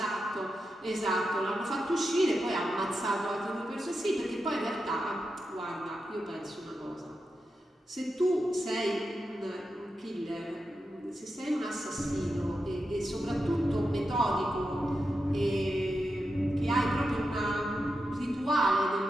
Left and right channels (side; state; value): both; normal; correlation 0.88